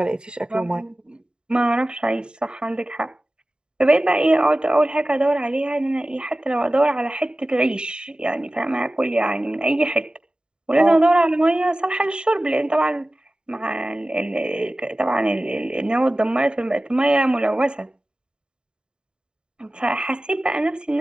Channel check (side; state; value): left; late; 0.048 ms